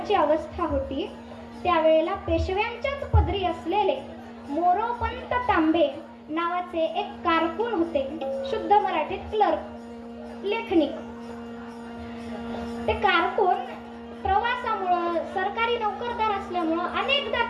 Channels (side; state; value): both; identical; correlation 1.00